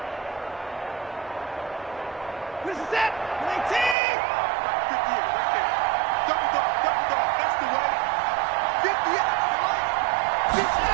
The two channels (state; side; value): drops out; left; at 4.0 s